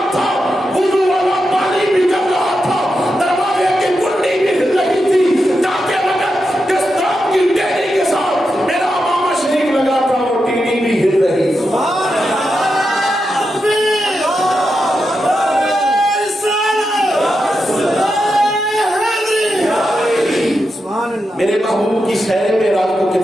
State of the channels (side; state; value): both; normal; correlation 0.87